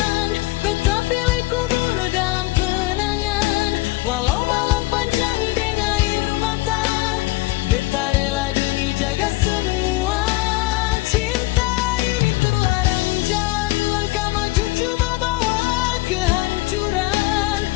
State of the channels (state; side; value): quieter; right; 20.3 dB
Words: beta pilih kubur dalam kenangan. Walau malam panjang dengan air mata, beta rela demi jaga semua. Cinta ini terlarang jalan, langkah maju cuma bawa kehancuran.